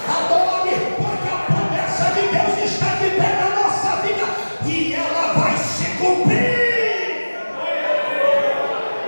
Adore, porque a promessa de Deus está de pé na nossa vida, e ela vai se cumprir.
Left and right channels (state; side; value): inverted; both; correlation -1.00